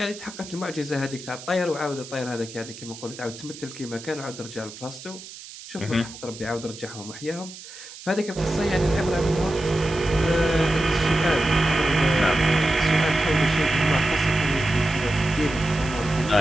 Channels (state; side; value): noise; right; hiss, 15 dB below the sound